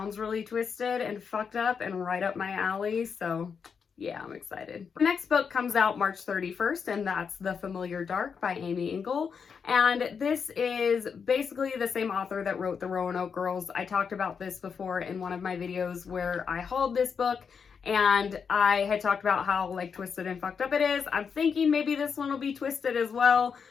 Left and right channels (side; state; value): right; quieter; 6.2 dB